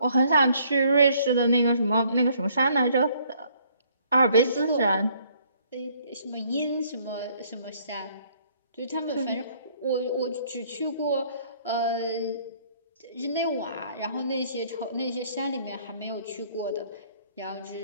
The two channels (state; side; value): inverted; both; correlation -0.63